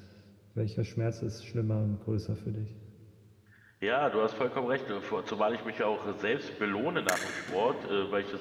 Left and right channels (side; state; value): both; identical; correlation 1.00